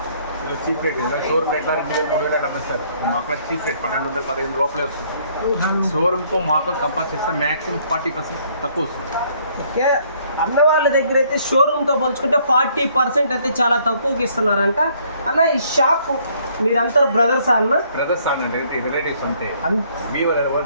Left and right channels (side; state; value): both; inverted; correlation -0.64